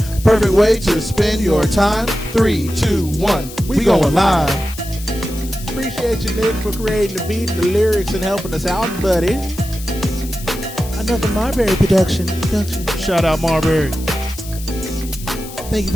Perfect way to spend your time. 3, 2, 1, we going live. Appreciate you, Nick, for creating the beat, the lyrics, and helping us out, buddy. Another Marbury production. Shout out Marbury. Thank you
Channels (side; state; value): left; noise; hiss, 14 dB below the sound